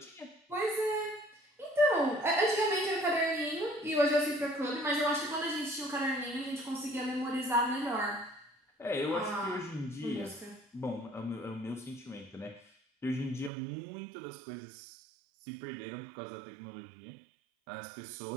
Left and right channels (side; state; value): left; drops out; at 13.5 s